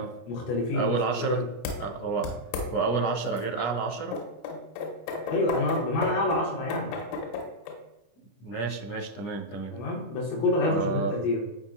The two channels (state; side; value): late; right; 25 ms